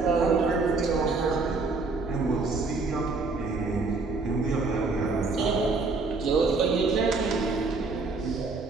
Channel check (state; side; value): quieter; left; 3.9 dB